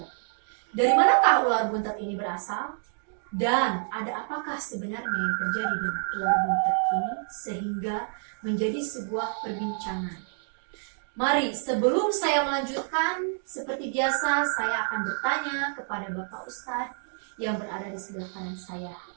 Dari manakah ular buntet ini berasal? Dan ada apakah sebenarnya yang terjadi dengan ular buntet ini sehingga menjadi sebuah perbincangan? Mari sebelum saya melanjutkan, seperti biasa saya akan bertanya kepada Bapak Ustadz yang berada di sebelah kanan saya.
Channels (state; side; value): silent; left; 59 dB below the other